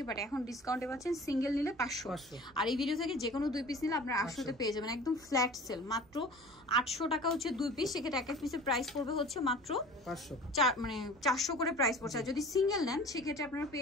বাট এখন ডিসকাউন্টে পাচ্ছেন সিঙ্গেল নিলে 500, আর এই ভিডিও থেকে যে কোনো 2 পিস নিলে আপনার 800-তে পেয়ে যাবেন। একদম ফ্ল্যাট সেল, মাত্র 800 টাকা হচ্ছে 2 পিস। সেক্ষেত্রে এক এক পিসের প্রাইস পড়বে হচ্ছে মাত্র 400 করে প্রাইস পড়ছে। আর যদি সিঙ্গেল নেন সেক্ষেত্রে আপনারা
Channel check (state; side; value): normal; both; correlation 0.42